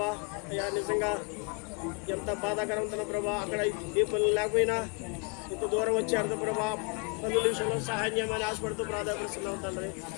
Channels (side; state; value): right; quieter; 36.1 dB